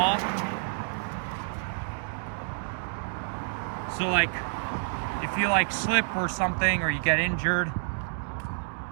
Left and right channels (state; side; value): silent; left; digital silence